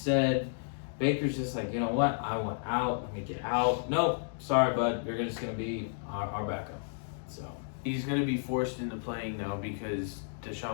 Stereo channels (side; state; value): right; silent; digital silence